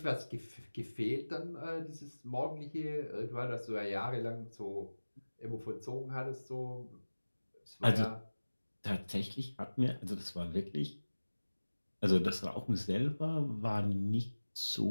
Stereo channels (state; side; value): inverted; both; correlation -1.00